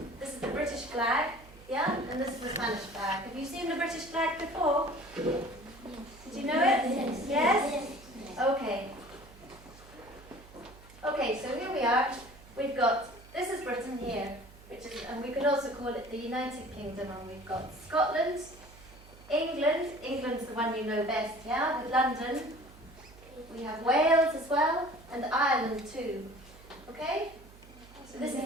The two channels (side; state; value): right; noise; hum, 21 dB below the sound